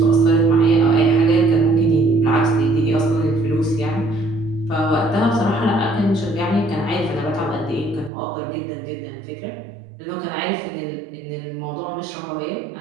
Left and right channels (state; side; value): drops out; left; at 8.1 s